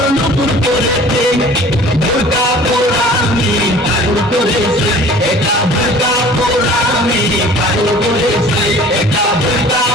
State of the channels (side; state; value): both; normal; correlation 0.47